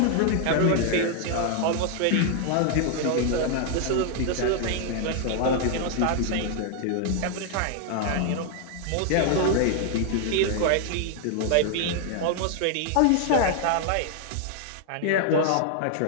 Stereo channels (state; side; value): different; both; correlation 0.00